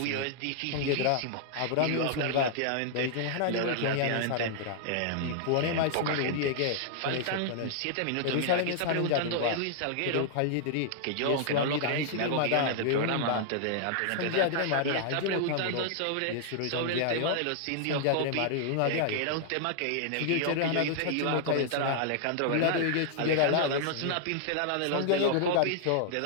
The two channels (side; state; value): both; different; correlation -0.01